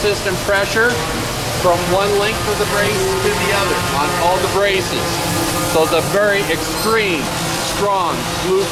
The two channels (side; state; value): both; identical; correlation 1.00